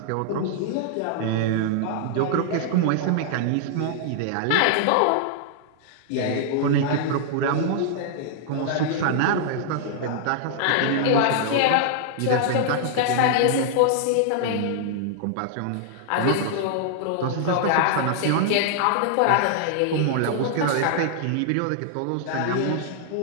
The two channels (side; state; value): both; different; correlation -0.01